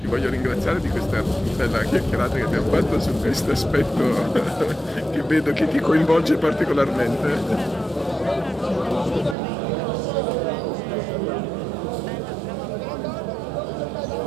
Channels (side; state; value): left; drops out; at 9.3 s